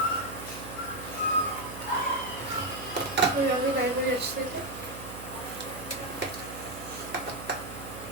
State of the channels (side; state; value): right; noise; hum, 11 dB below the sound